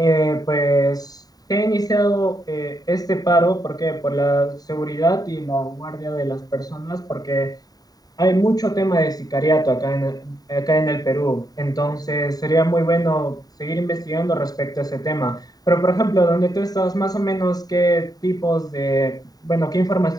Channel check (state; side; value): late; right; 0.18 ms